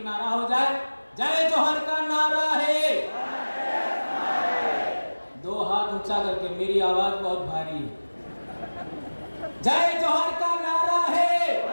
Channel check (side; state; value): both; inverted; correlation -1.00